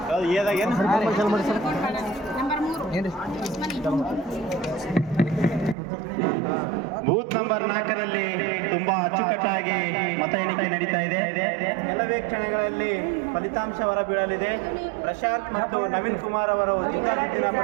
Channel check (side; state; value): left; drops out; at 5.8 s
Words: ಏದಾಗ ಏನು ಚಲ್ ಮಾಡಿ ಸರ್ ನಂಬರ್ 3 ಏನು ಬೂತ್ ನಂಬರ್ 4ರಲ್ಲಿ ತುಂಬಾ ಅಚ್ಚುಕಟ್ಟಾಗಿ ಮತ ಎಣಿಕೆ ನಡೀತಾ ಇದೆ. ಕೆಲವೇ ಕ್ಷಣಗಳಲ್ಲಿ ಫಲಿತಾಂಶ ಹೊರಬೀಳಲಿದೆ. ಪ್ರಶಾಂತ್ ಮತ್ತು ನವೀನ್ ಕುಮಾರ್ ಅವರು ಜಿದ್ದಾಜಿದ್ದಿನ